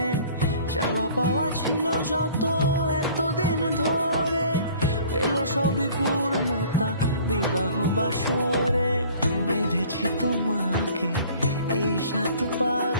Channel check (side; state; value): both; inverted; correlation -0.51